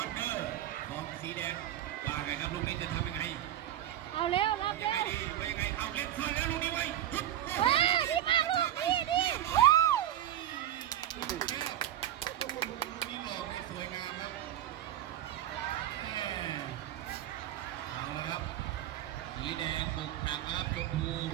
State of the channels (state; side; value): quieter; left; 12.3 dB